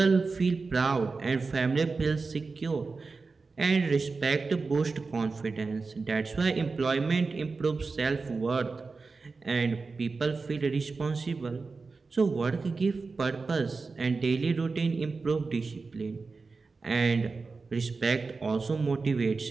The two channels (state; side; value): quieter; left; 4.2 dB